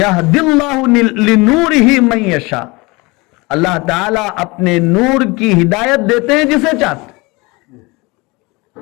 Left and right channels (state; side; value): quieter; right; 24.8 dB